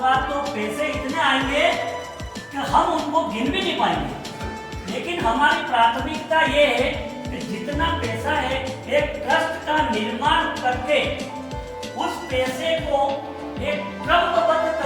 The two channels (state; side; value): identical; both; correlation 1.00